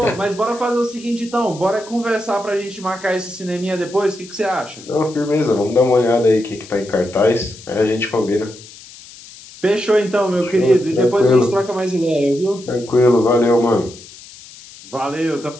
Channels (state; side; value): noise; left; hiss, 19 dB below the sound